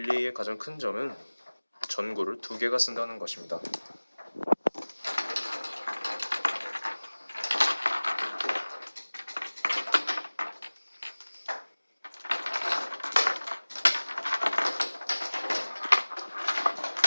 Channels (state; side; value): inverted; both; correlation -1.00